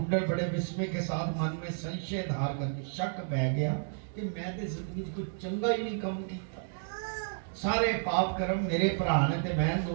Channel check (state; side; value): silent; left; digital silence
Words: बड़े विस्मय के साथ मन में संशय धार करके शक बह गया कि मैं तो जिंदगी कुछ चंगा ही नहीं काम किया। सारे पाप कर्म मेरे भरा ने ते मैं